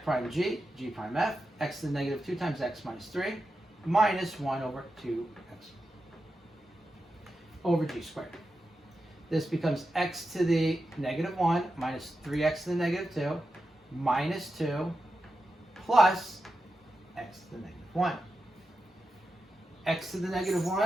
prime g, g prime f, x to the negative 2 times x minus 3, minus 1 over 2x over g squared. This becomes x to the negative 1 minus 3x to the negative 2 minus 2 plus x to the negative 1. X to the negative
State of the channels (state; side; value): normal; both; correlation 0.90